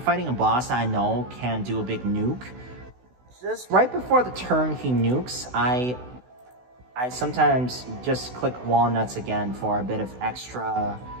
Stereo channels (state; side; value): late; left; 16 ms